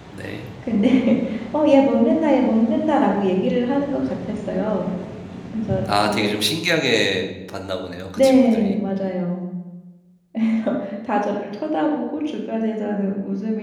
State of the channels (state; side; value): identical; both; correlation 1.00